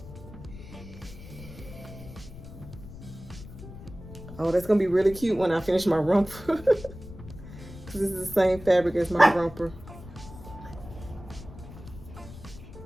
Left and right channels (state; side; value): noise; left; rumble, 15 dB below the sound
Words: Oh, that's gonna be really cute when I finish my romper. Because this is the same fabric as my romper.